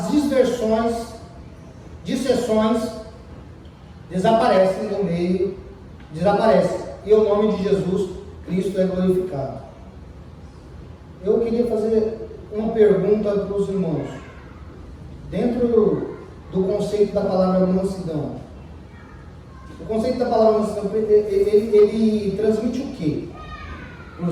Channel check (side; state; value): both; identical; correlation 1.00